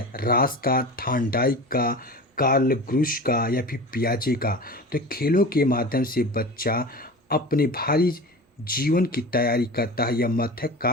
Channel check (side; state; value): both; normal; correlation 0.33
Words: रास का, थांडाइक का, कार्ल ग्रुश का या फिर पियाजे का? तो खेलों के माध्यम से बच्चा अपने भारी जीवन की तैयारी करता है, यह मत है